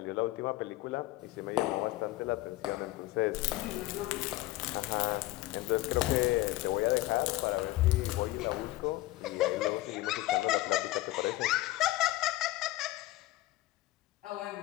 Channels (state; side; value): quieter; right; 17.7 dB